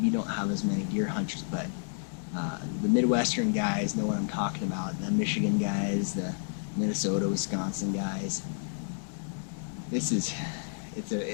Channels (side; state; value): right; silent; digital silence